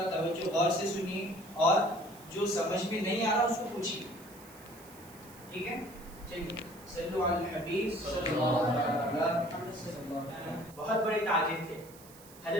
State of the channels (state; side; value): noise; right; hiss, 21 dB below the sound